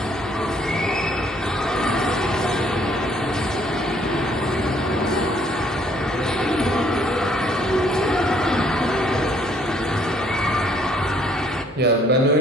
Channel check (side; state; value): both; normal; correlation 0.64